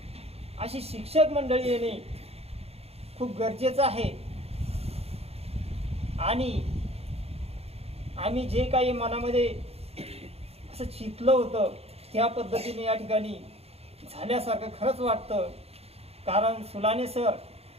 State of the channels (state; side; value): late; left; 0.29 ms